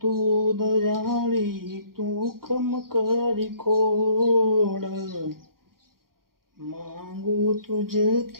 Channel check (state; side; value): late; left; 0.92 ms